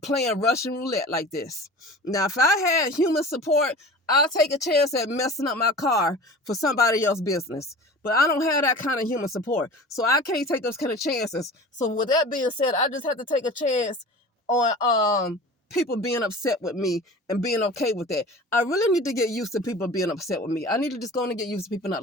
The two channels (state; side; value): normal; both; correlation 0.38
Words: Russian roulette like this. Now, if I had human support, I'll take a chance at messing up my car for somebody else's business. But I don't have that kind of human support. So I can't take those kind of chances. So with that being said, I just have to take a chance on people being upset with me and being okay with that. I really need to get used to people being upset with me. I need to just go and get used to people